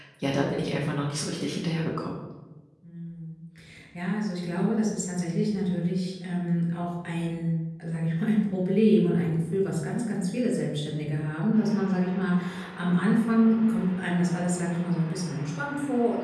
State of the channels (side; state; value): both; identical; correlation 1.00